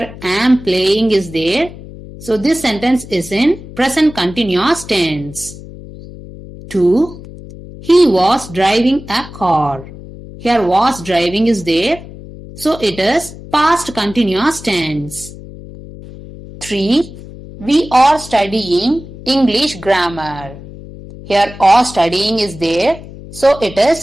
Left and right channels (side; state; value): left; noise; hum, 15 dB below the sound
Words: am playing is there. So this sentence is in present continuous tense. 2. He was driving a car. Here was driving is there. So it is past continuous tense. 3. We are studying English grammar. Here are studying is there, so it